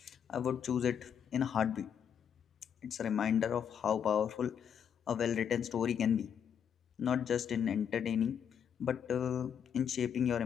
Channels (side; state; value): right; quieter; 8.1 dB